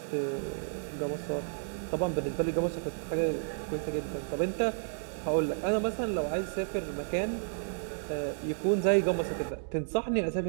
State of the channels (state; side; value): silent; left; digital silence